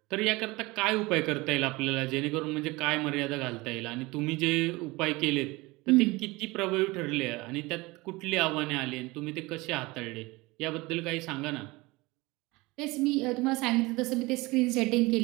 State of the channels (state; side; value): quieter; left; 22.5 dB